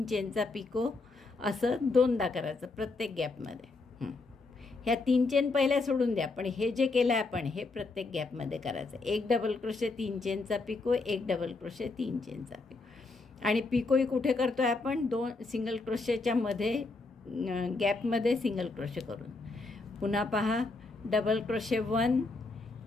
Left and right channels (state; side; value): quieter; right; 3.6 dB